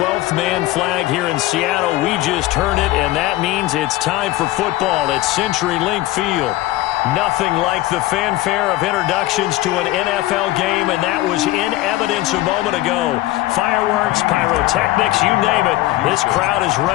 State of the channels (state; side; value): quieter; right; 16.7 dB